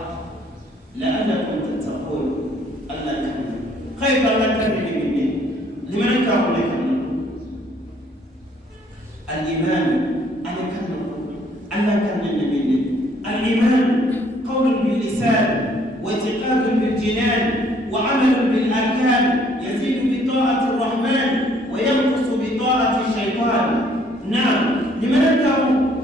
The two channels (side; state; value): both; normal; correlation 0.63